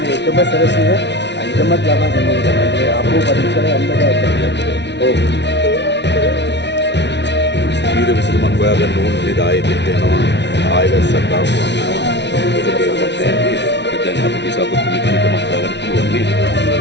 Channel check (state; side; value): late; right; 0.51 ms